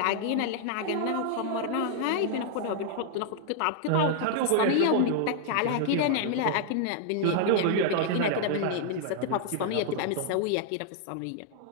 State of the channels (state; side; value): different; both; correlation 0.00